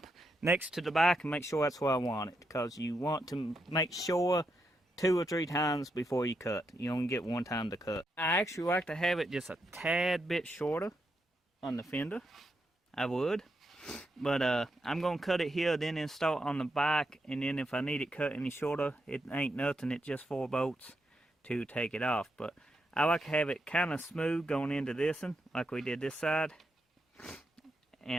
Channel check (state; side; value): normal; both; correlation 0.83